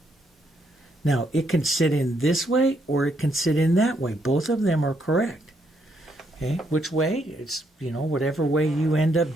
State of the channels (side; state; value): both; normal; correlation 0.75